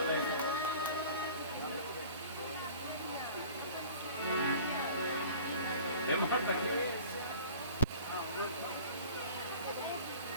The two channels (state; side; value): inverted; both; correlation -0.45